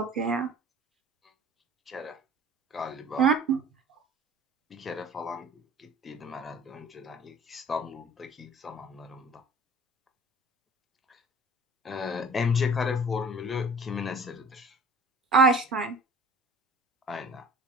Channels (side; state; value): both; normal; correlation 0.44